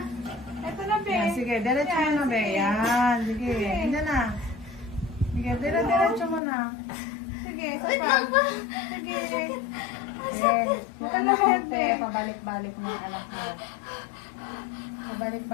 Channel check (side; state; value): right; drops out; at 6.4 s